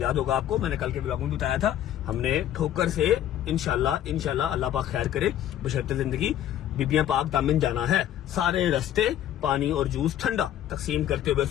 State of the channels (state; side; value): quieter; right; 11.5 dB